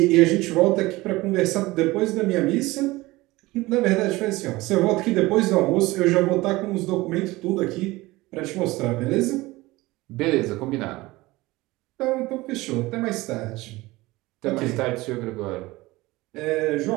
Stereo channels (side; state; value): left; quieter; 20.1 dB